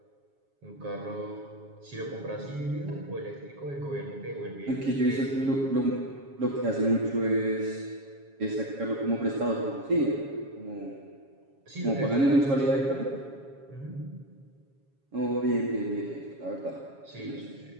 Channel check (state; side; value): late; left; 7.3 ms